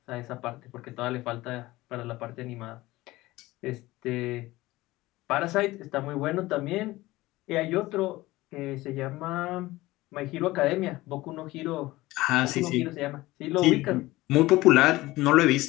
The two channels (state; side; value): quieter; right; 18.7 dB